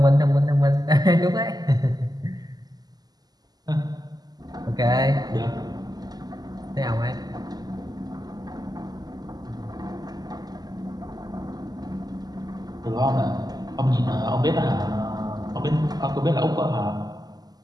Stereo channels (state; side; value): late; left; 0.19 ms